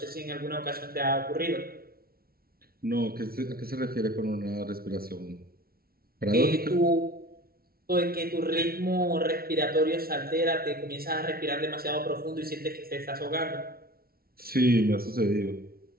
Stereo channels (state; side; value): late; left; 0.44 ms